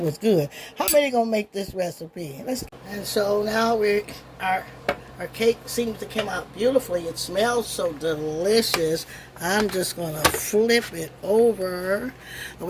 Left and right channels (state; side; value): identical; both; correlation 1.00